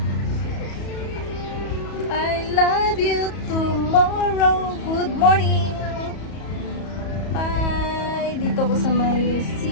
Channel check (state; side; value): late; right; 34 ms